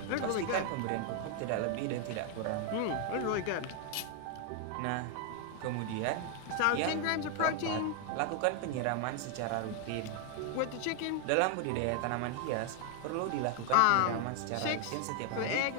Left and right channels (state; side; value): different; both; correlation 0.00